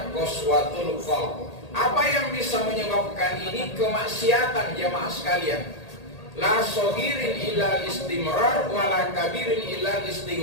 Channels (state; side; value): late; right; 1.8 ms